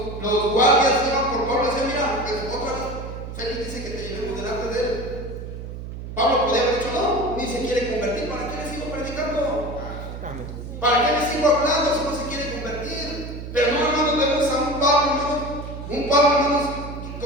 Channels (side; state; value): right; noise; hum, 9 dB below the sound